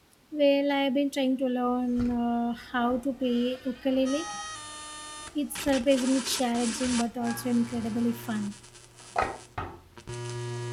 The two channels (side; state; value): both; identical; correlation 1.00